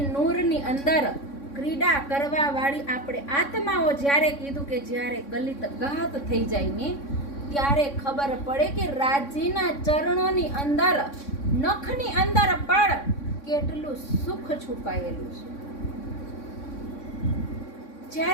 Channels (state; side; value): late; right; 3.6 ms